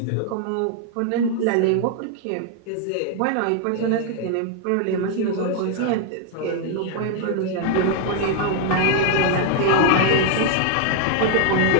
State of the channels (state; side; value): different; both; correlation 0.00